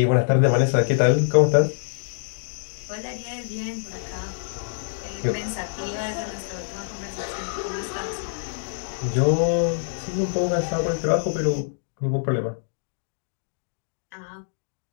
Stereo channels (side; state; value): right; silent; digital silence